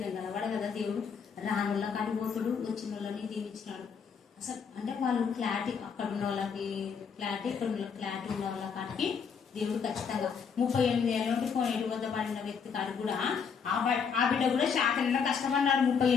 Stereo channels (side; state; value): right; quieter; 6.4 dB